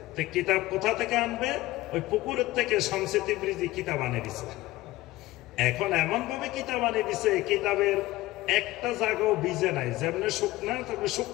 তো কিতাব কোথা থেকে আনবে? ওই পুকুরের থেকে শামসে তিবরিজি কিতাব আনে দিছে। এখন এমন ভাবে কিতাব আনে দিছে, কিতাবের একটা জায়গাও ভিজে নাই, যেমনি শুকনা তবে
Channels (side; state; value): right; quieter; 17.8 dB